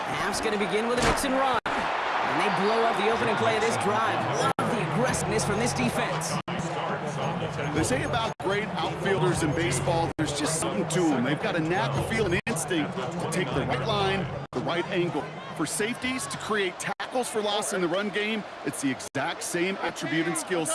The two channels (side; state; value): both; identical; correlation 1.00